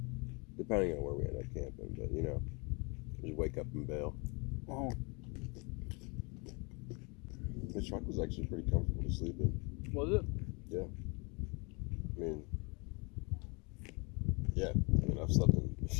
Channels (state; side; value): quieter; right; 30.5 dB